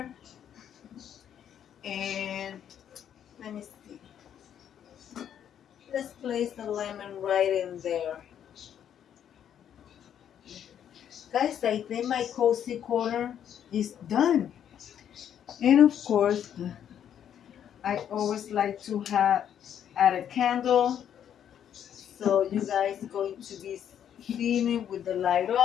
And let me see. Let's place the lemon right in there. Guys, I think my cozy corner is done. And of course, I always like to add a candle. So you guys are going to be seeing it with the light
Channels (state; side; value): quieter; right; 9.5 dB